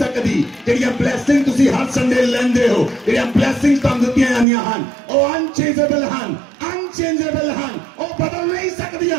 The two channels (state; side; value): drops out; left; at 4.5 s